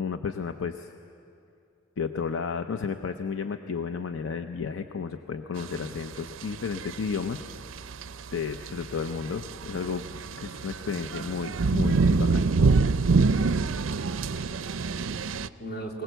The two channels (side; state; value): both; normal; correlation 0.54